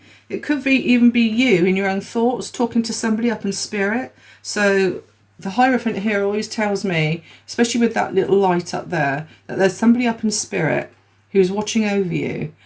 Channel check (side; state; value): both; identical; correlation 1.00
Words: It could even be you in your own thoughts talking to somebody up in spirit. So the Hierophant here always tells me, especially with that little light up there, that there's somebody up in spirit who's watching over you.